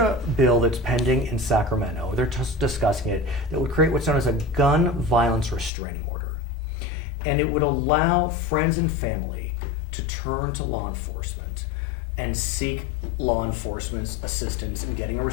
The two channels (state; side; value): drops out; right; at 5.7 s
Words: bill that's pending in Sacramento. They're just discussing it that would create what's known as a gun violence restraining order. And it would allow friends and family to turn to law enforcement and seek law enforcement's assistance in getting a